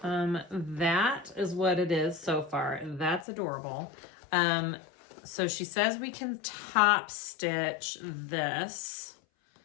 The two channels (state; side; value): drops out; right; at 3.2 s